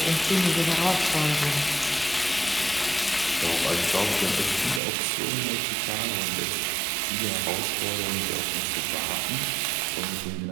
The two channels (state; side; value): drops out; left; at 4.8 s